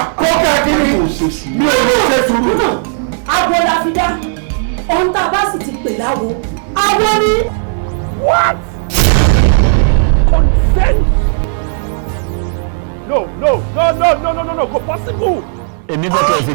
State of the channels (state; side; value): silent; left; digital silence